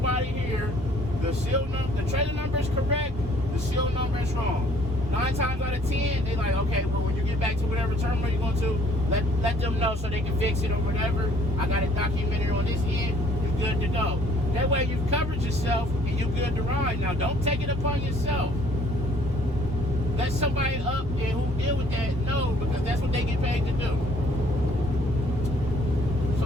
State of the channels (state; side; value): normal; both; correlation 0.60